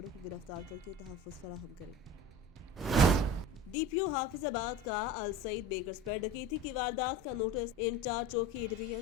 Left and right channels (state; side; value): normal; both; correlation 0.36